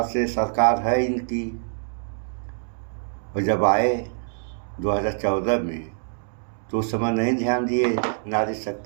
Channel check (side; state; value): left; silent; digital silence